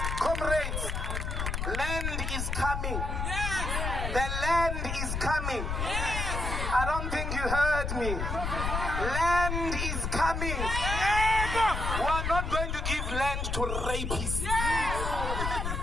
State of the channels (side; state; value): left; noise; rumble, 2 dB below the sound